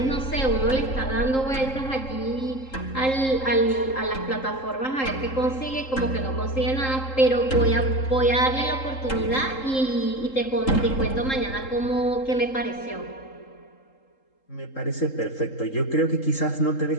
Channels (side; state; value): right; late; 3.8 ms